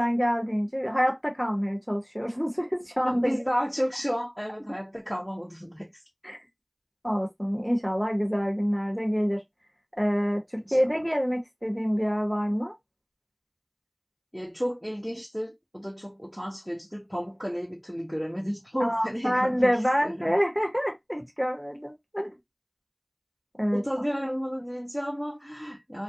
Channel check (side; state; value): both; identical; correlation 1.00